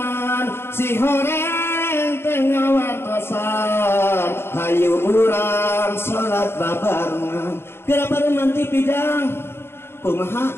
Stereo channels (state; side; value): late; right; 0.11 ms